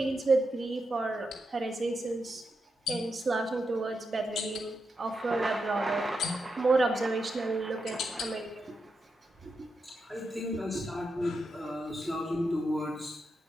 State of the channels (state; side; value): normal; both; correlation 0.86